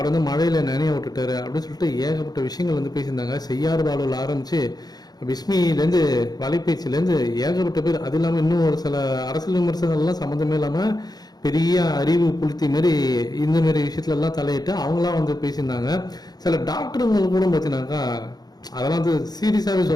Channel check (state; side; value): late; right; 0.19 ms